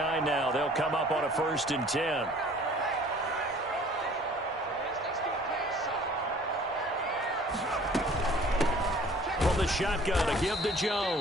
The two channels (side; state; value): both; normal; correlation 0.51